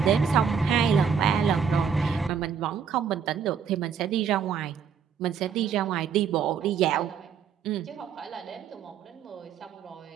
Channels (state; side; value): quieter; left; 6.9 dB